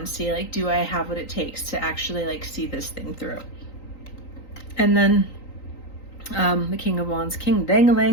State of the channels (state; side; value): late; right; 3.9 ms